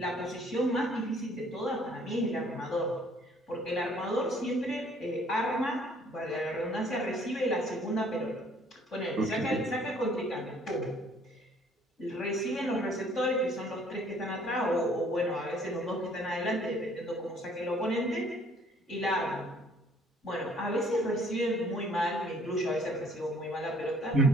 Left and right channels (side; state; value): both; normal; correlation 0.59